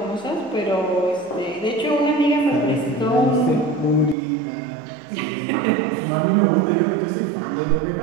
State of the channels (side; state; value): left; drops out; at 4.2 s